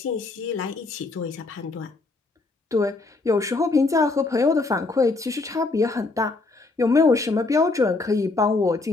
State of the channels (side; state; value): right; quieter; 3.5 dB